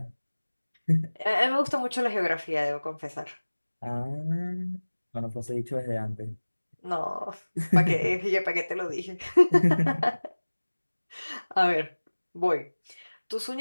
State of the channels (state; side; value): inverted; both; correlation -1.00